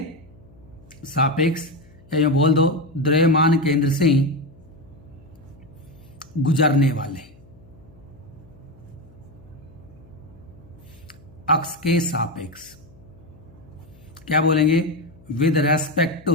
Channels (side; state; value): left; noise; hum, 25 dB below the sound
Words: सापेक्ष, या यूं बोल दो द्रव्यमान केंद्र से गुजरने वाले अक्ष के सापेक्ष क्या बोलेंगे, with respect to